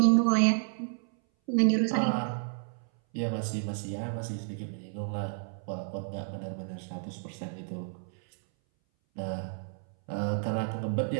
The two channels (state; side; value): silent; left; 57 dB below the other